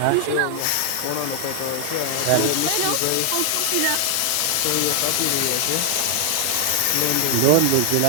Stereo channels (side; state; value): both; different; correlation 0.00